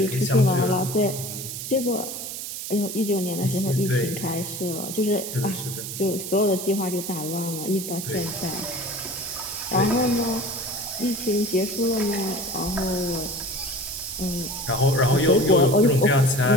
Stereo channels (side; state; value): right; noise; hiss, 7 dB below the sound